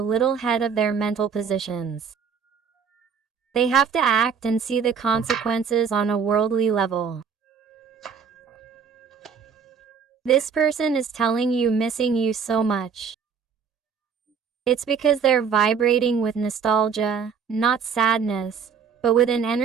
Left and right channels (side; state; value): left; quieter; 6.4 dB